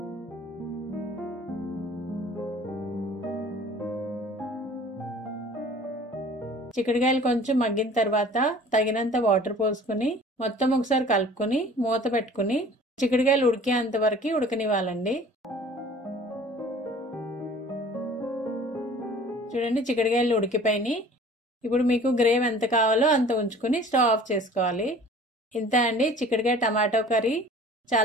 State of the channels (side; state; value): both; normal; correlation 0.47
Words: చిక్కుడుకాయలు కొంచెం మగ్గిన తర్వాత తగినంత వాటర్ పోసుకుని మొత్తం ఒకసారి కలుపుకుని మూత పెట్టుకుని చిక్కుడుకాయలు ఉడికేంత వరకు ఉడకనివ్వాలండి. చూడండి, చిక్కుడుకాయలు ఉడికిపోయినాయి. ఇప్పుడు మీకు గ్రేవీ ఎంత కావాలో అంత ఉంచుకుని స్టవ్ ఆఫ్ చేసుకోవాలి. ఇంత అండి చిక్కుడుకాయ టమాటో కర్రీ.